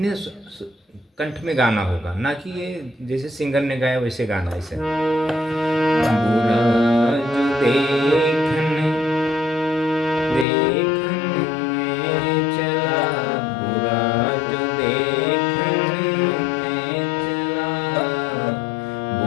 कंठ में गाना होगा, ना कि ये जैसे सिंगर ने गाया वैसे गाना। ऐसे बुरा जो देखन में चला, बुरा जो देखन में चला,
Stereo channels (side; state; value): right; drops out; at 10.5 s